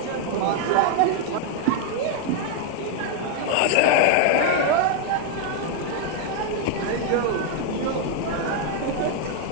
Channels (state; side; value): different; both; correlation 0.00